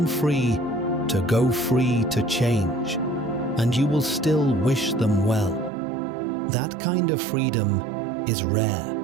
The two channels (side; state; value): left; drops out; at 5.7 s